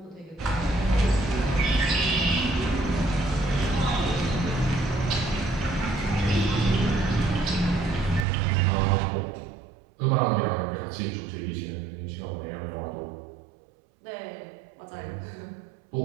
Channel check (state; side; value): drops out; left; at 8.2 s